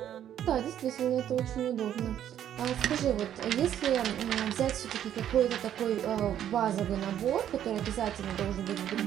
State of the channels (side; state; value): left; quieter; 10.5 dB